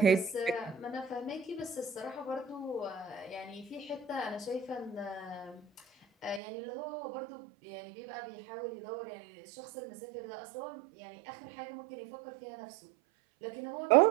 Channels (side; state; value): left; drops out; at 6.4 s